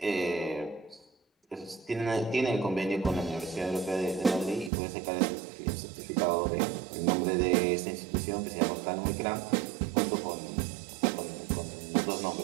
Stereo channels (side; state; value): left; drops out; at 4.7 s